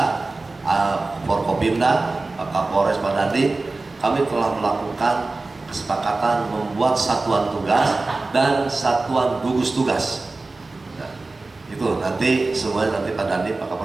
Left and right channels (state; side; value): quieter; left; 3.4 dB